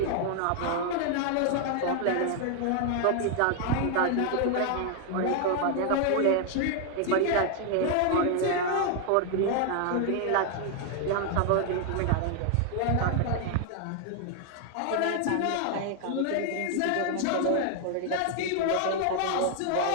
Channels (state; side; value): different; both; correlation 0.00